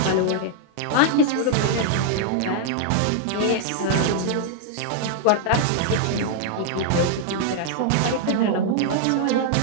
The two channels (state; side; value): different; both; correlation -0.01